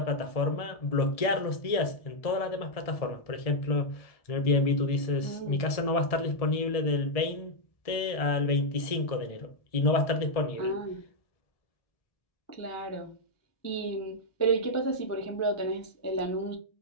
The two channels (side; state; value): right; late; 1.7 ms